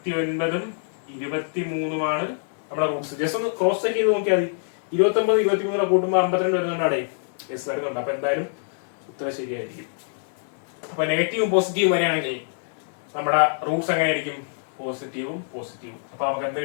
23-ഉമാണ് നമ്മളെ റൂട്ട്സ്. ജസ്റ്റ് ഒന്ന് ക്രോസ് ചെക്ക് ചെയ്ത് നോക്കിയാൽ മതി. 29 23 കൂട്ടുമ്പോ 52 വരുന്നുണ്ടാടേ. യെസ്, വരുന്നുണ്ട്. അപ്പൊ എന്തായാലും ഉത്തരം ശരിയായിരിക്കും. അപ്പൊ നെഗറ്റീവും പോസിറ്റീവും വരികയാണെങ്കിൽ നമ്മുടെ റൂട്ട്സ് എങ്ങനെയായിരിക്കും? പോസിറ്റീവും പോസിറ്റീവും. അപ്പൊ നമുക്ക് എന്ത്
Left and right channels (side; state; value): right; silent; digital silence